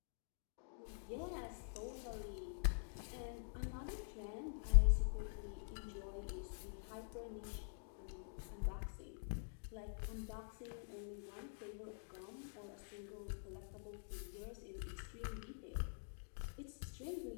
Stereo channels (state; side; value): silent; right; digital silence